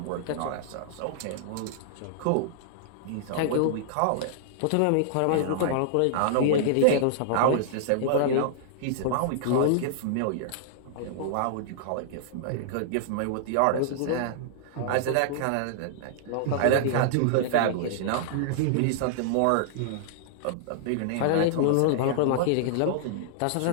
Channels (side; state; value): both; different; correlation -0.01